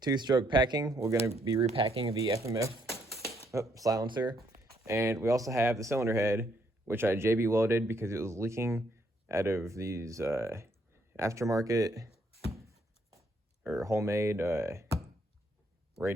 2-stroke packing. We're going to be repacking the FMF silencer. And we also have the cylinder head, which I JB welded because it was leaking out of these aftermarket or homemade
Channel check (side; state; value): both; normal; correlation 0.71